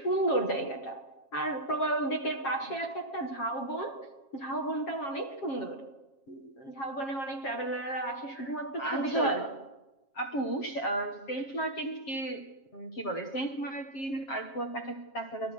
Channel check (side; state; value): right; late; 7.4 ms